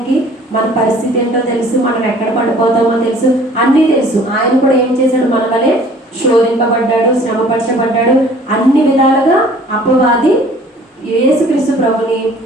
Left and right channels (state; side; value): normal; both; correlation 0.52